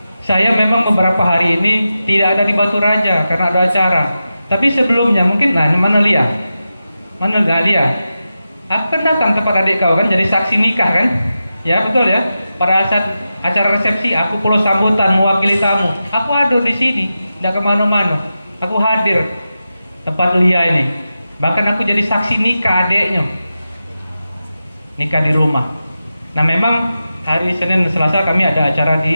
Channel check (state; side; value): inverted; both; correlation -0.91